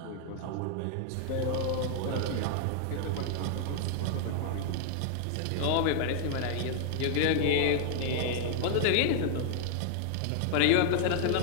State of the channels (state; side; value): different; both; correlation -0.01